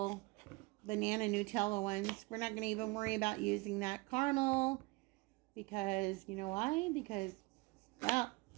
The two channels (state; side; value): quieter; left; 24.5 dB